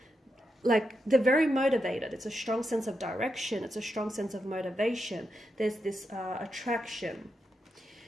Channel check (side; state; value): both; normal; correlation 0.85